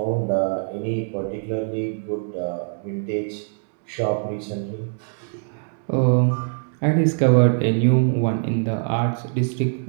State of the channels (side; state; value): left; silent; digital silence